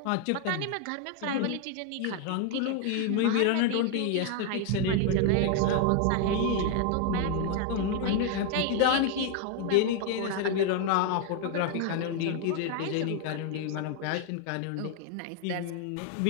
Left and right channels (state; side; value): different; both; correlation 0.00